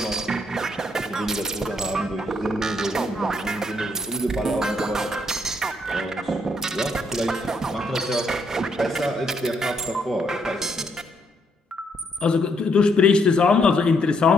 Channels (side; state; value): both; normal; correlation 0.73